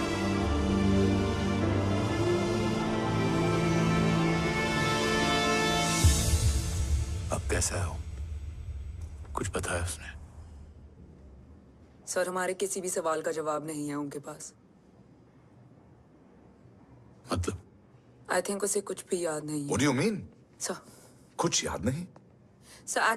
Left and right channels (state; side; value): identical; both; correlation 1.00